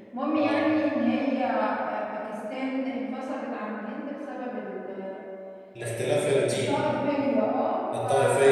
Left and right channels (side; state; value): both; identical; correlation 1.00